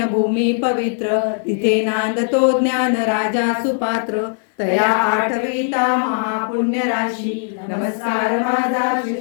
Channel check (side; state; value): right; silent; 63 dB below the other